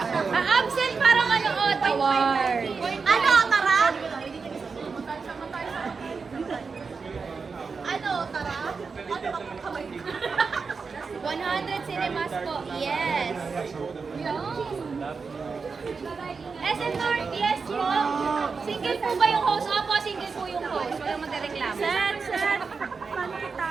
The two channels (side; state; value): left; quieter; 5.0 dB